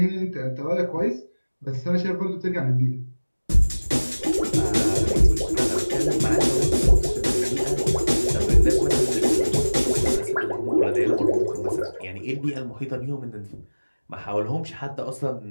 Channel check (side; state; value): both; inverted; correlation -1.00